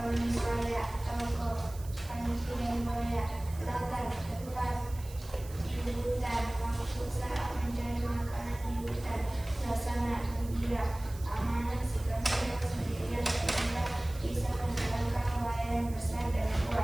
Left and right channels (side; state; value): right; noise; hiss, 19 dB below the sound